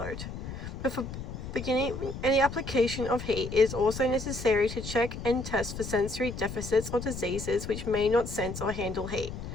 Before beginning any application of heat, it is also necessary to check and test for sensory deficits or diseases which may not sense or handle heat.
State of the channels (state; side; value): noise; left; rumble, 8 dB below the sound